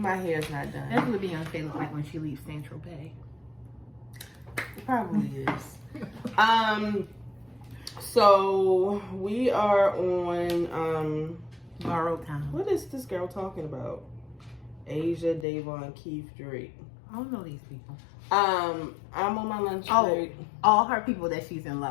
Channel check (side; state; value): right; drops out; at 15.5 s